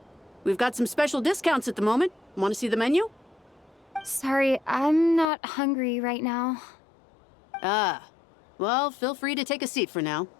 We've got some special discounts at the moment. Want to see the menu? Sorry, I'm not hungry right now. Ah. Well, feel free to take a seat for now.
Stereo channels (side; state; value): right; drops out; at 5.2 s